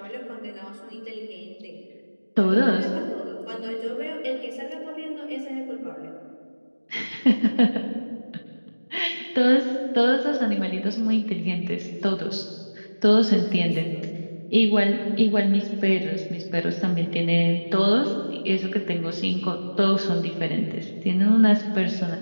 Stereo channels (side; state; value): both; inverted; correlation -1.00